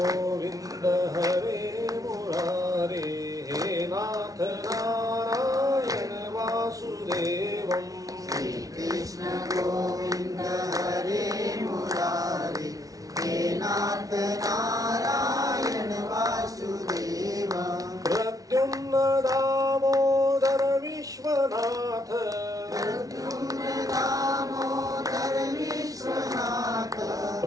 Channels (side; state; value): left; late; 0.18 ms